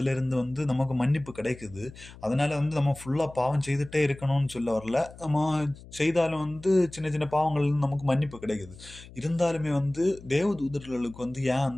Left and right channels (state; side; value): noise; left; hum, 19 dB below the sound